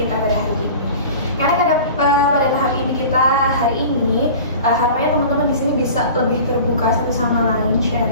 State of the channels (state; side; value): inverted; both; correlation -0.39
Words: kita pada hari ini. Karena pada tahap ini kita hari ini harapannya teman-teman di sini bisa lebih terbuka satu sama lain